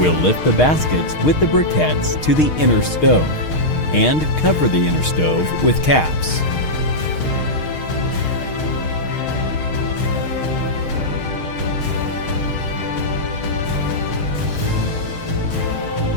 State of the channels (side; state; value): right; late; 6.5 ms